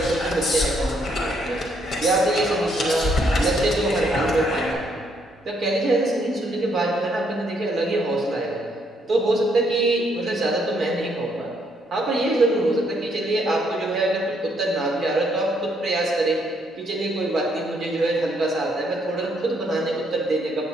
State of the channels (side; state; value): both; normal; correlation 0.72